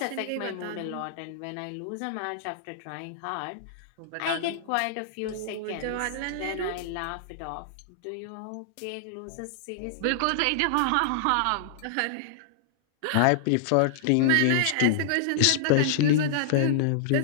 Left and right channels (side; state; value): both; different; correlation -0.01